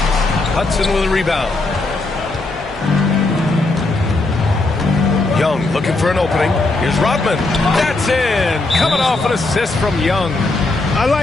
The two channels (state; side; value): quieter; right; 3.1 dB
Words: Hudson with a rebound. Young looking for an opening. Here's Rodman. That's in. Coming off an assist from Young. I